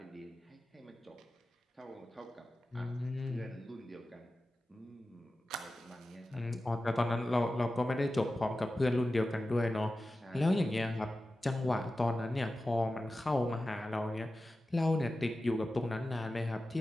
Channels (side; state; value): both; normal; correlation 0.94